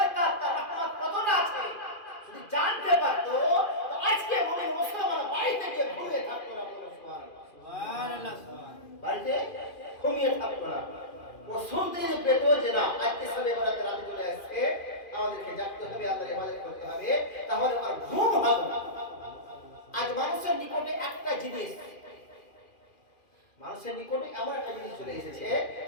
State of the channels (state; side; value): late; right; 2.4 ms